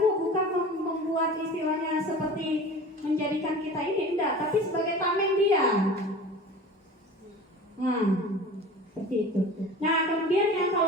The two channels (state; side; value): normal; both; correlation 0.38